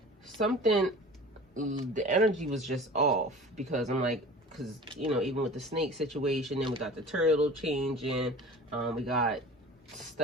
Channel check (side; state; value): both; normal; correlation 0.40